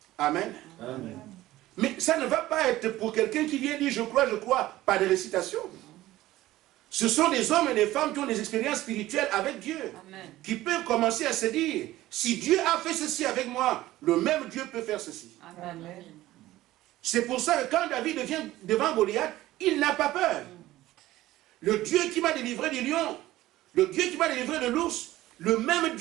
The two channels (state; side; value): quieter; left; 16.0 dB